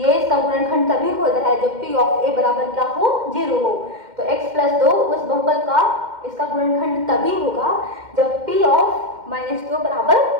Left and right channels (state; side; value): late; left; 2.1 ms